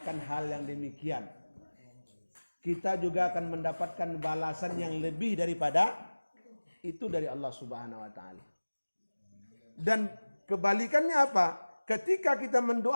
hal yang demikian. Kita juga akan mendapatkan balasan yang lebih daripada itu dari Allah Subhanahu wa taala. Dan kebalikannya apa? Ketika kita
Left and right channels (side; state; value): both; inverted; correlation -1.00